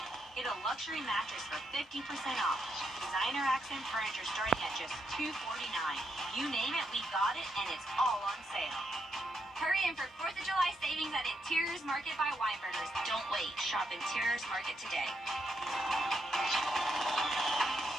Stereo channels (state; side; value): normal; both; correlation 0.80